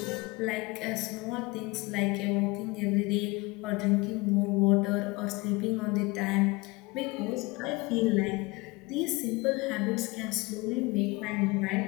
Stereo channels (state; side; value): quieter; right; 24.2 dB